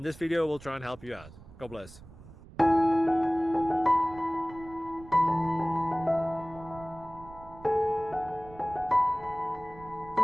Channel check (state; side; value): noise; right; rumble, 19 dB below the sound